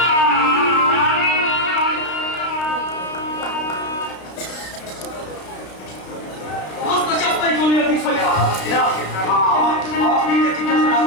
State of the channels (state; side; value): late; right; 32 ms